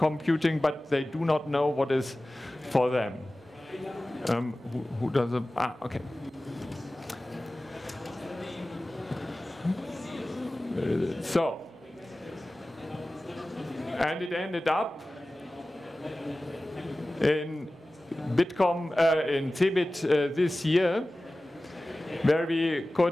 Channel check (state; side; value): normal; both; correlation 0.97